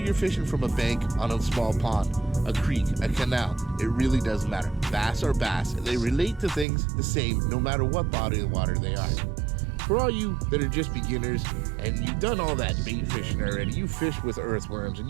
you're fishing from a bank on a small pond, a creek, a canal, it really doesn't matter. Bass are bass, and they relate to things the same no matter what body of water they are. For all you that are just beginners, and you've done all that bait fishing already, you fish with earthworms, and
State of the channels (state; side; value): drops out; left; at 6.7 s